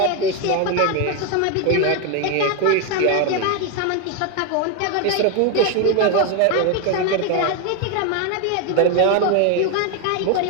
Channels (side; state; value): both; different; correlation 0.01